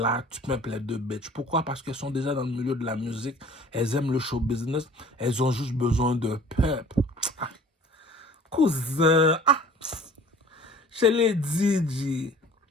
tu peux les deux bitches. Pourquoi? Parce qu'elles sont déjà dans le milieu de la musique. Elles aiment le show business. Elles ont juste besoin de pep. Ah, cousin, je l'ai dit, G.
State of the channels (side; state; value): both; normal; correlation 0.48